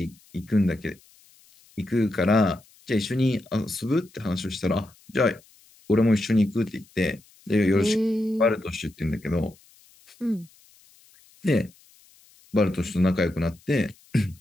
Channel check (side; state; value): left; noise; hiss, 29 dB below the sound